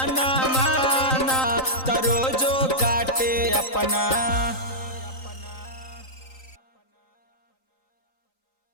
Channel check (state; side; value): late; right; 3.9 ms